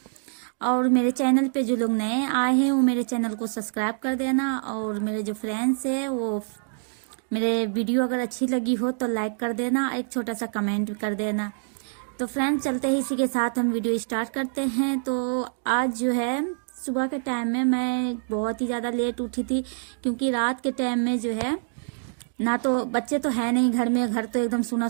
और मेरे चैनल पे जो लोग नए आए हैं वो मेरे चैनल को सब्सक्राइब कर देना। और मेरे जो फ्रेंड्स है वो मेरे वीडियो अगर अच्छी लगी हो तो लाइक कर देना, एक छोटा सा कमेंट भी कर देना। तो फ्रेंड्स, चलते हैं इसी के साथ हम वीडियो स्टार्ट करते हैं। तो आज जो है सुबह के टाइम में मैं बहुत ही ज़्यादा लेट उठी थी, क्योंकि रात के टाइम में जो है ना तो बच्चे तो है नहीं घर में, घर तो एकदम सुना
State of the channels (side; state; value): left; silent; 61 dB below the other